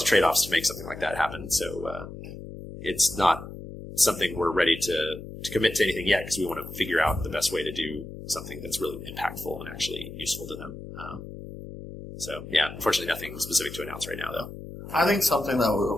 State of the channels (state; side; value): noise; left; hum, 12 dB below the sound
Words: of trade-offs to make something like that happen. So it's not something we're ready to commit to anything yet because we want to figure out the best way to do something that's really impactful and actually useful to them. Unfortunately nothing specific to announce right now, though. I think something that